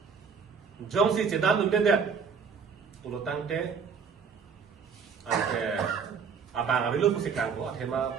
Jong si cedan numbe det ulutang te ante abang abilu pusi klangko athema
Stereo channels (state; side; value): quieter; left; 6.1 dB